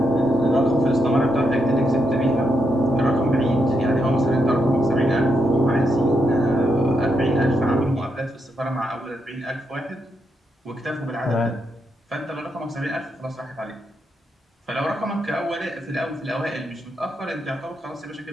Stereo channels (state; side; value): normal; both; correlation 0.81